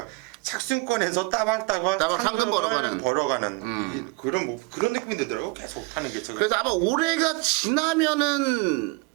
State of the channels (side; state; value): left; quieter; 27.6 dB